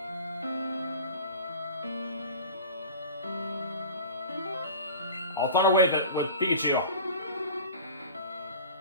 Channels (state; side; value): inverted; both; correlation -0.38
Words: I'll Thunder Wave it with Pikachu.